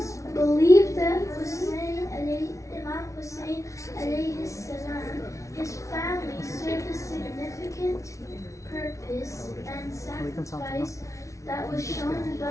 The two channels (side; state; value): right; late; 0.15 ms